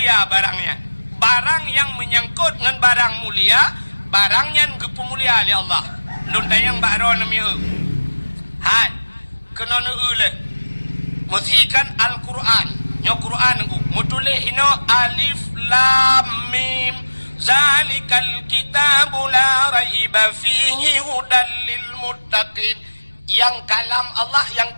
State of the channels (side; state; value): both; inverted; correlation -1.00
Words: barangnya. Barang yang menyangkut dengan barang mulia, barangnya gepu mulia oleh Allah. Luntayang bakro nami hai kena le musikan Al-Quran nyo Quran ku mutulih hino alif lam mim zalikal kitabu la raiba fihi hudal lil muttaqin. Yang kalam Allah yang